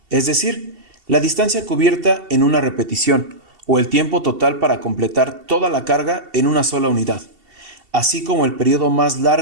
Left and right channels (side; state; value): left; late; 2.7 ms